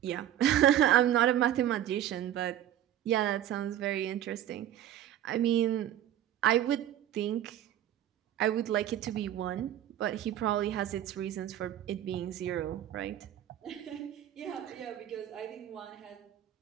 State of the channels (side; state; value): left; quieter; 11.7 dB